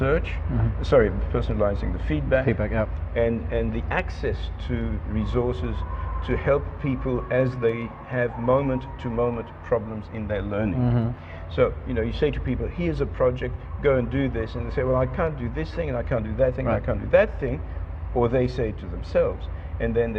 personalizing the feedback, and the access to resources to help people as they have moment-to-moment problems in their learning. So, you say to people, here's a project, go and do this, and they say, well, I can't do this thing, and I can't do that thing, and I can't do that thing, or they say to themselves, and then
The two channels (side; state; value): both; identical; correlation 1.00